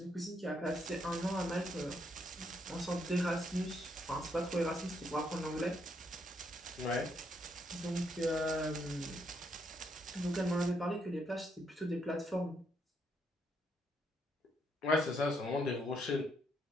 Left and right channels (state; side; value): normal; both; correlation 0.75